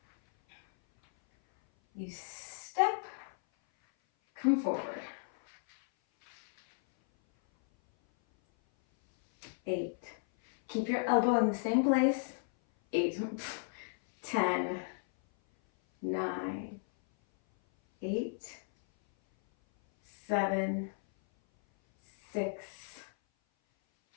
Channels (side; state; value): right; silent; 55 dB below the other